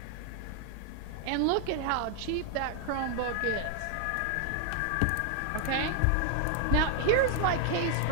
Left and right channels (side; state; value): both; different; correlation 0.00